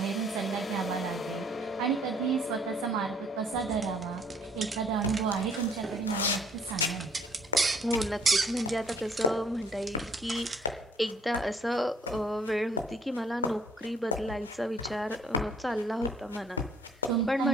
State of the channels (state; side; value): normal; both; correlation 0.60